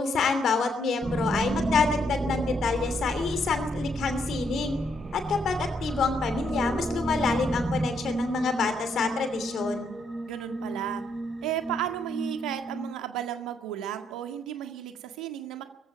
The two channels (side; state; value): both; normal; correlation 0.73